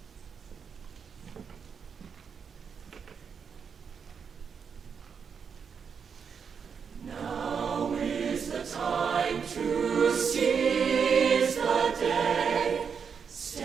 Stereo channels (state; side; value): quieter; left; 6.5 dB